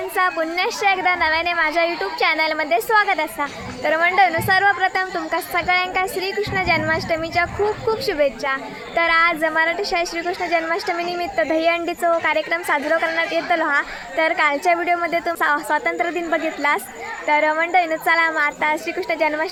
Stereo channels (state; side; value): identical; both; correlation 1.00